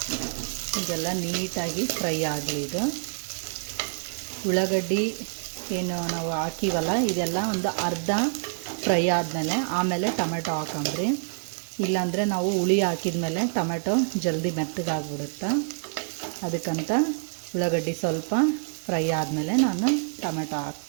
ಇದೆಲ್ಲ ನೀಟಾಗಿ ಫ್ರೈ ಆಗಲಿ. ಇದು ಉಳ್ಳಾಗಡ್ಡಿ ಏನು ನಾವು ಹಾಕಿವಲ್ಲ, ಇದೆಲ್ಲ ಒಂದು ಅರ್ಧ ಫ್ರೈ ಆದಮೇಲೆ ಆಮೇಲೆ ಟೊಮೆಟೊ ಹಾಕೊಂಡ್ರಿ. ಇಲ್ಲಾಂದರೆ ನಾವು ಹುಳಿ ಹಾಕಿದ್ಮೇಲೆ ಟೊಮೆಟೊ ಜಲ್ದಿ ಮೆತ್ತಗಾಗ್ಬಿಡುತ್ತೆ. ಅದಕ್ಕಂತ ಉಳ್ಳಾಗಡ್ಡಿ ಸ್ವಲ್ಪ ಫ್ರೈ ಆದಮೇಲೆ ನಾನು ಟೊಮೆಟೊ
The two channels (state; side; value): silent; left; digital silence